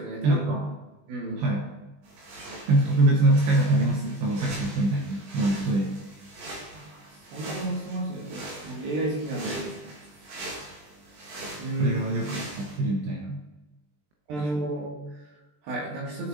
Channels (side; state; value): left; late; 20 ms